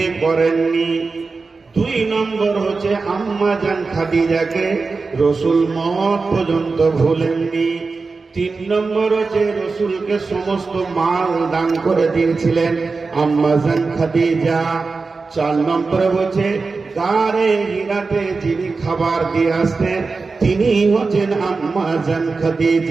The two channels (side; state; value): left; quieter; 4.2 dB